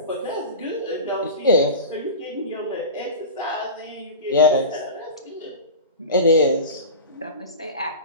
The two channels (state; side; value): inverted; both; correlation -0.30